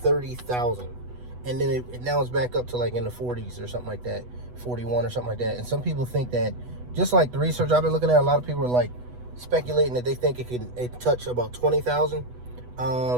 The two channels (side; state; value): left; late; 8.1 ms